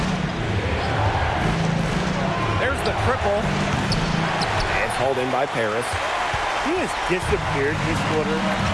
There's the triple. It's hauled in by Paris. He has disappeared this quarter,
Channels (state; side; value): identical; both; correlation 1.00